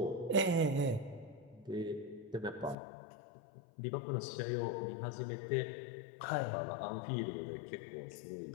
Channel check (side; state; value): right; drops out; at 2.8 s